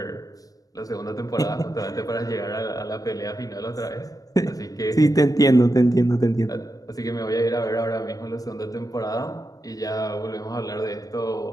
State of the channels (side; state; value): right; late; 0.18 ms